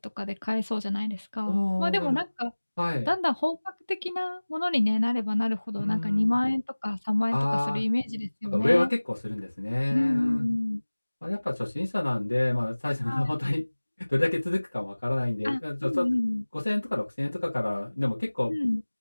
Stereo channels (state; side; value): inverted; both; correlation -1.00